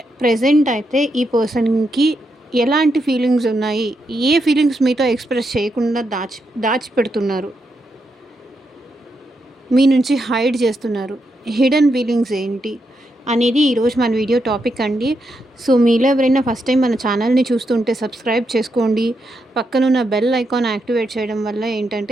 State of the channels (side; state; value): both; normal; correlation 0.82